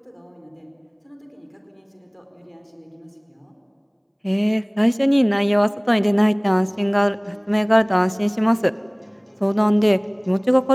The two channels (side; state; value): both; identical; correlation 1.00